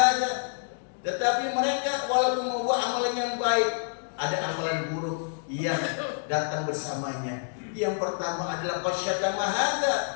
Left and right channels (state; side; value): silent; right; digital silence